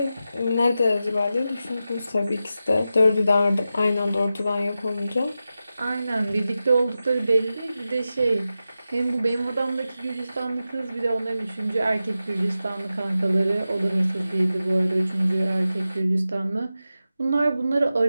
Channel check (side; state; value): both; inverted; correlation -0.92